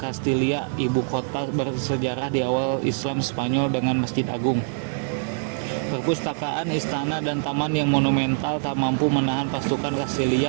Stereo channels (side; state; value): left; silent; digital silence